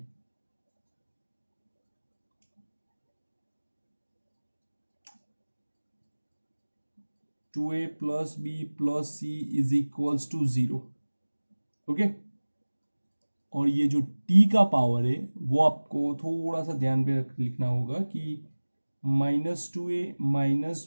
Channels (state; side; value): inverted; both; correlation -1.00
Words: Two A plus B plus C is equals to 0। Okay, और ये जो t का पावर है वो आपको थोड़ा सा ध्यान पे लिखना होगा कि -2a minus